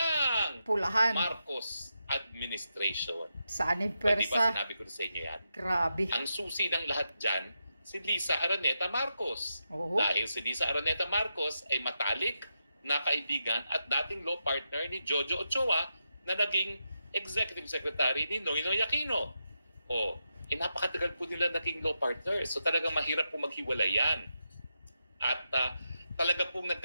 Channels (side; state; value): both; inverted; correlation -0.85